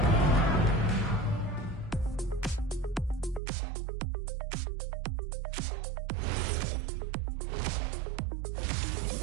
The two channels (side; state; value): left; drops out; at 3.4 s